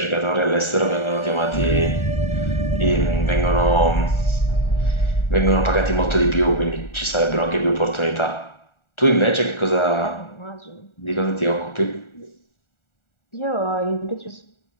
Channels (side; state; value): right; late; 1.4 ms